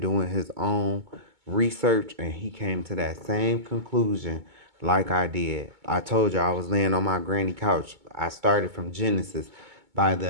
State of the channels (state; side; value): late; left; 2.2 ms